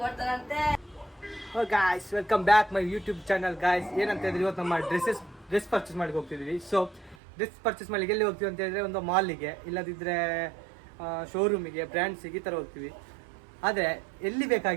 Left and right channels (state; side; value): drops out; left; at 7.2 s